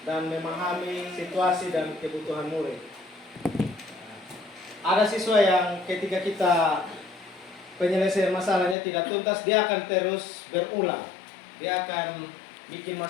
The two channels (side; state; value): right; drops out; at 8.8 s